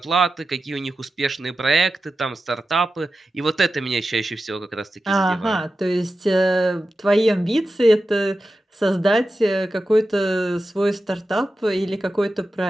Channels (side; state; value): both; normal; correlation 0.92